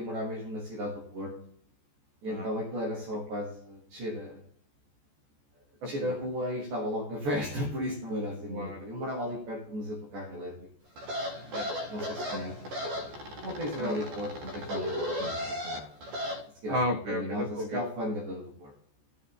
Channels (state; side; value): late; left; 14 ms